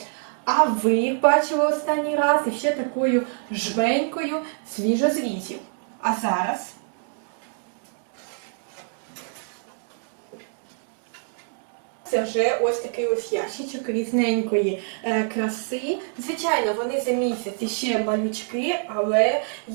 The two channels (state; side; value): silent; left; 62 dB below the other